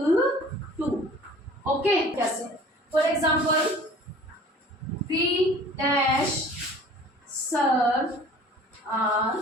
to। Okay, कैसे? For example, we dash serve our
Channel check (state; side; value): normal; both; correlation 0.47